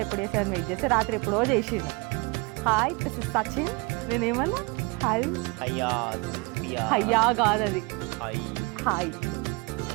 అని వెయిట్ చేస్తే రాత్రి ఎప్పుడో చేసిండు. Hi this is Sachin. నేనేమన్నా హాయ్ హయ్యా కాదు అది హాయ్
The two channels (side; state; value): left; quieter; 27.8 dB